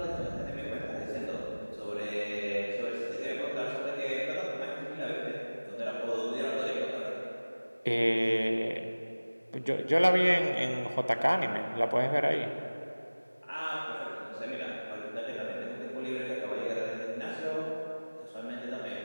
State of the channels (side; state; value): both; inverted; correlation -1.00